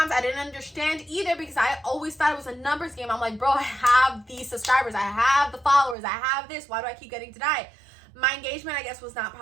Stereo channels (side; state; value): left; drops out; at 6.0 s